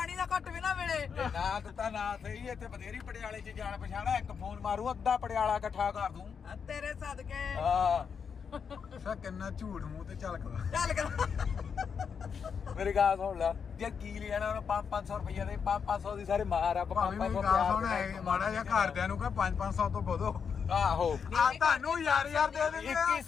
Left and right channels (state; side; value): quieter; right; 6.5 dB